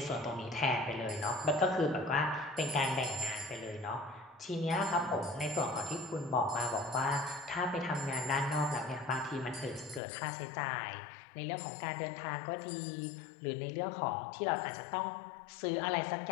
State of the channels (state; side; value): drops out; right; at 10.0 s